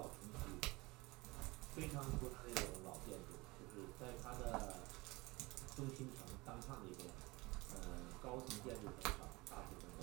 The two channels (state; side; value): quieter; left; 23.2 dB